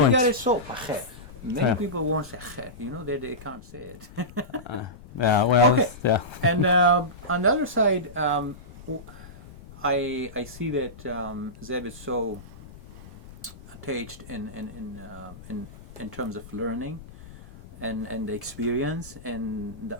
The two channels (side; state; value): left; noise; rumble, 18 dB below the sound